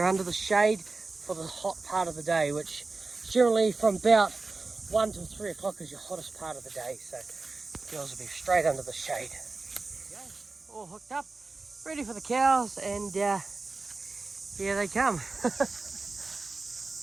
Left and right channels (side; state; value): left; quieter; 3.7 dB